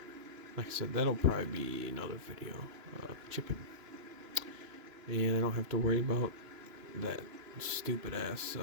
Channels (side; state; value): left; late; 2.9 ms